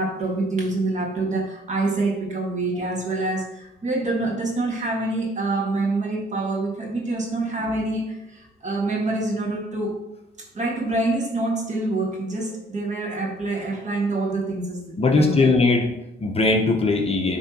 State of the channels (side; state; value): both; normal; correlation 0.60